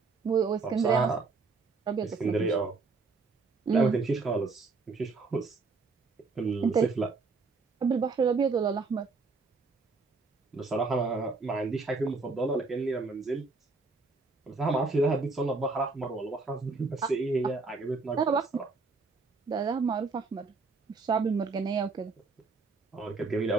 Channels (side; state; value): left; quieter; 4.2 dB